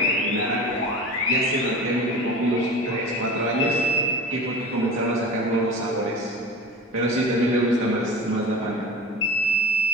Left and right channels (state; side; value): normal; both; correlation 0.33